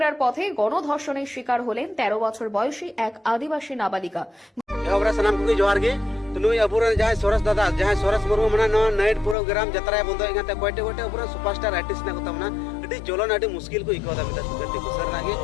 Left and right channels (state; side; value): drops out; right; at 9.3 s